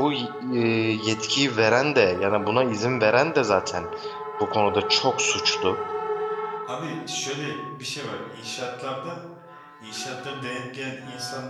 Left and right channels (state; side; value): identical; both; correlation 1.00